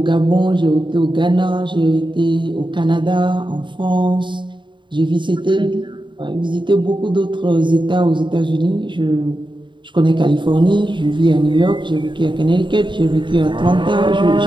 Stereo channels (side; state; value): left; late; 0.23 ms